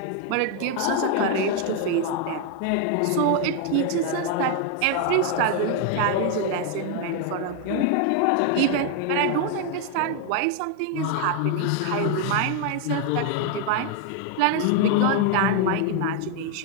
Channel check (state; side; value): different; both; correlation 0.01